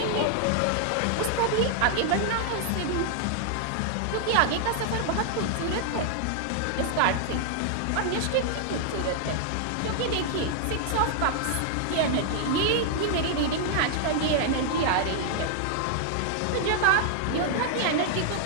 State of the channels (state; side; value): different; both; correlation 0.00